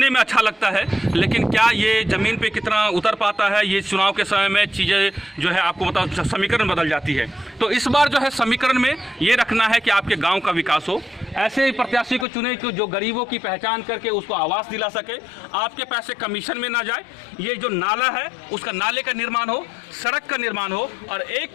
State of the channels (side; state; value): right; drops out; at 12.2 s